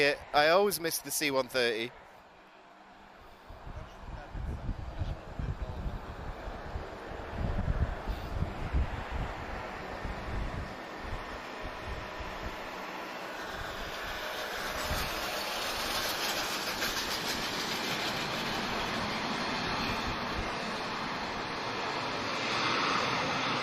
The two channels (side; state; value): both; identical; correlation 1.00